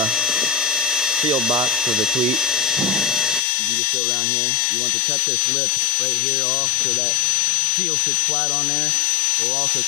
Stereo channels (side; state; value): right; drops out; at 3.4 s